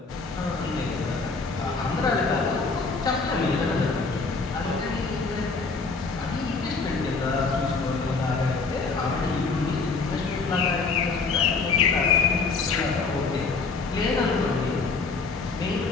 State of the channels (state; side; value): quieter; right; 4.3 dB